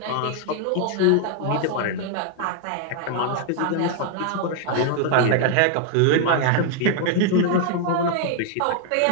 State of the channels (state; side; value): different; both; correlation 0.00